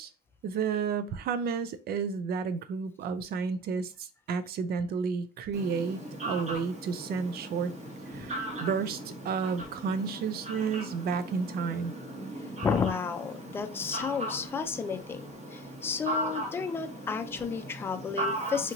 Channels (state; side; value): normal; both; correlation 0.39